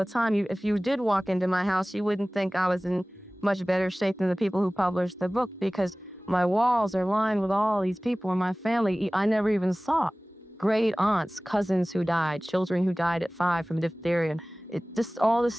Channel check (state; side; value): normal; both; correlation 0.98